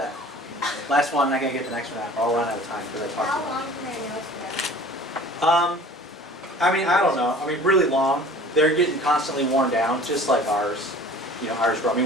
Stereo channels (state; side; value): normal; both; correlation 0.46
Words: Last one, I'm not gonna get the next one out. I'll run out of time because I talked How about long can their nails grow? I mean, I don't know. I mean, really long. They're getting constantly worn down, just like ours. You know, ours grow. I